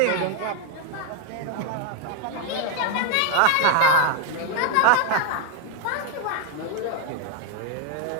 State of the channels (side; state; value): both; different; correlation 0.01